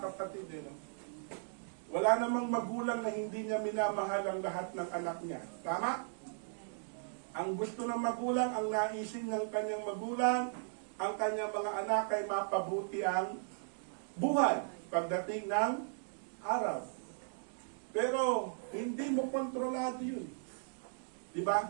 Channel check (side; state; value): left; silent; digital silence